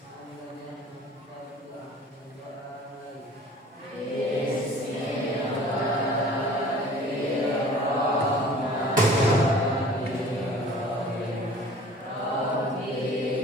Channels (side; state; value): both; normal; correlation 0.47